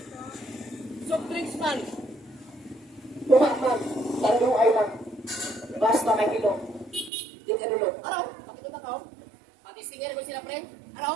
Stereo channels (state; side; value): drops out; left; at 7.1 s